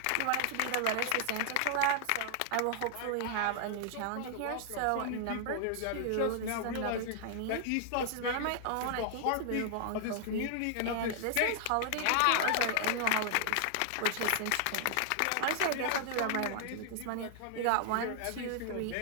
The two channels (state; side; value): different; both; correlation 0.00